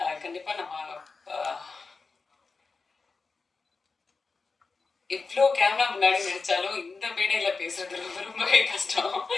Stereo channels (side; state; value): right; quieter; 4.3 dB